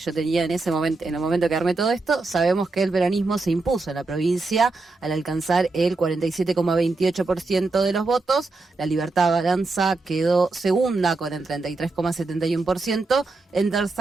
tenía en ese momento, en el momento que armé todo esto, sabemos que el peronismo se impuso en la provincia al alcanzar el 47,28% de los votos. La Libertad Avanza quedó segunda con el 33,71%. En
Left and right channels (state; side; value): quieter; left; 3.5 dB